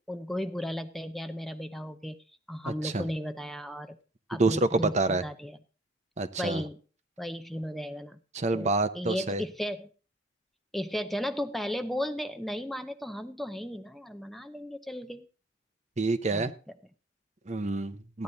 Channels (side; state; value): both; normal; correlation 0.55